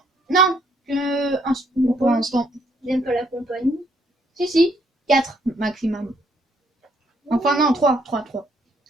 Non, pour l'instant. J'aime pas la compagnie. Si, 4 maximum. Enfin, non, 3.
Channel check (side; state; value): both; normal; correlation 0.69